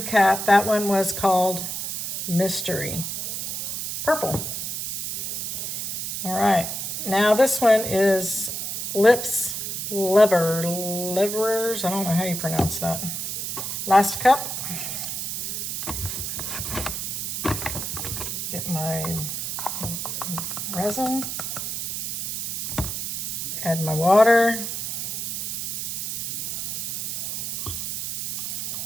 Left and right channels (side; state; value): right; noise; hiss, 3 dB below the sound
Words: that one was called Mystery Purple. All right, now this one is Lips Livers. I don't know how you pronounce that. Last cup. Get my resin. Add my water.